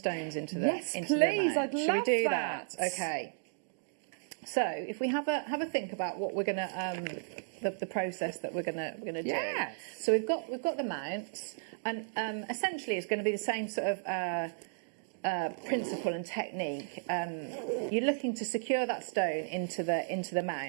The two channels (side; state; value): left; silent; digital silence